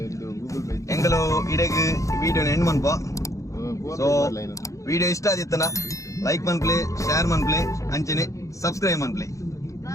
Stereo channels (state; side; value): late; right; 0.15 ms